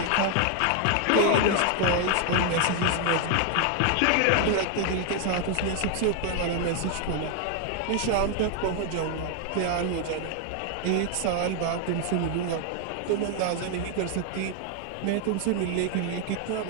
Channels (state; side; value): different; both; correlation 0.00